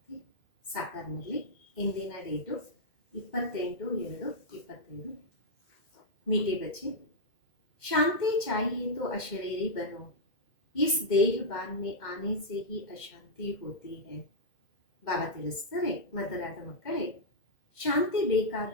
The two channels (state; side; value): late; right; 2.1 ms